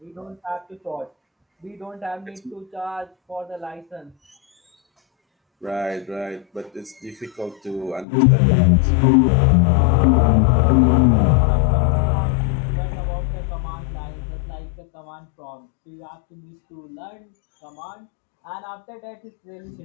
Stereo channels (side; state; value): right; drops out; at 8.1 s